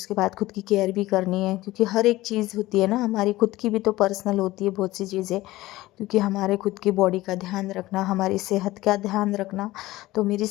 बाद खुद की केयर भी करनी है, क्योंकि हर एक चीज़ होती है ना, हमारी खुद की भी तो पर्सनल होती है बहुत सी चीज़ें, क्योंकि हमारे खुद की बॉडी का ध्यान रखना, हमारी सेहत का ध्यान रखना। तो मेरी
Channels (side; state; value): right; quieter; 17.6 dB